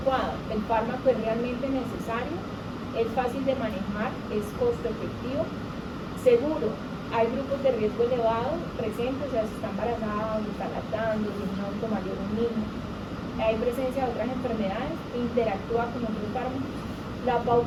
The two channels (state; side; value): identical; both; correlation 1.00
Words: el fármaco es realmente necesario, es fácil de manejar, es costo efectivo, seguro. Hay grupos de riesgo elevado presentes, o sea, si está embarazada, si está lactando, si es un adulto mayor o un niño. Hay presencia de otras enfermedades, interactúa con otros fármacos. La